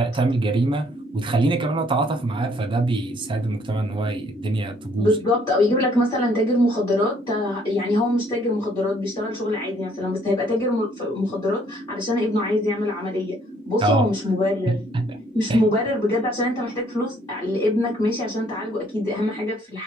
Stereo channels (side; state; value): both; normal; correlation 0.64